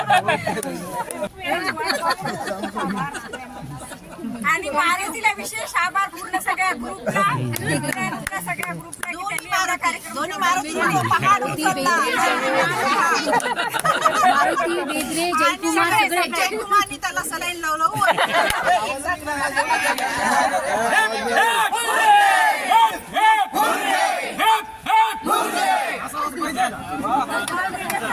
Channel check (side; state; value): both; identical; correlation 1.00